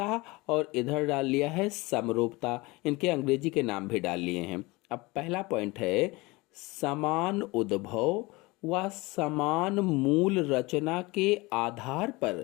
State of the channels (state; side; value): quieter; right; 23.1 dB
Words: और इधर डाल लिया है समरूपता। इनके अंग्रेजी के नाम भी डाल लिए हैं। अब पहला पॉइंट है समान उद्भव व समान मूल रचना के आधार पर